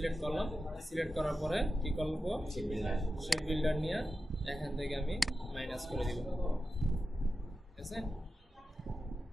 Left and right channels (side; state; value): both; normal; correlation 0.92